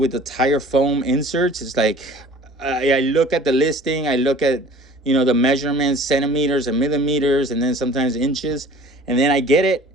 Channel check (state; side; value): normal; both; correlation 0.47